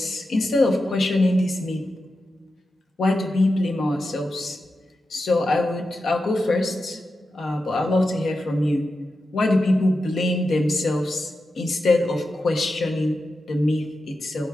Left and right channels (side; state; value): both; normal; correlation 0.90